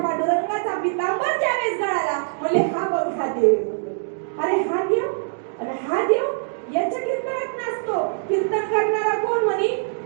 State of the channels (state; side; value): silent; left; digital silence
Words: पांडुरंगाचा पितांबर ज्यावेळेस गळाला, म्हणजे हा बघ हा देव. अरे हा देव आणि हा देव याच्या कीर्तनात नसतो. कीर्तन करणारा कोण म्हणे?